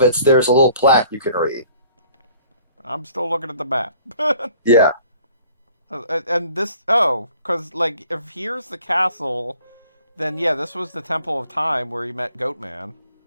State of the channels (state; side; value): inverted; both; correlation -0.55